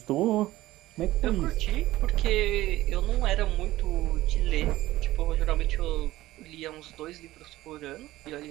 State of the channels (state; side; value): quieter; left; 16.4 dB